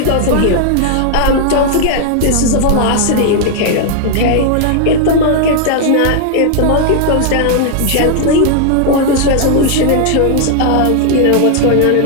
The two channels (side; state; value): both; different; correlation -0.01